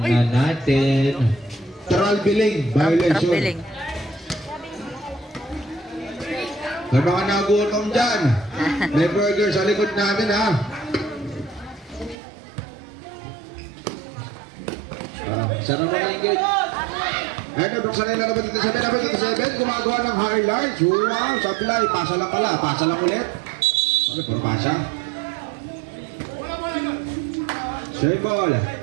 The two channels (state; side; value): drops out; left; at 12.2 s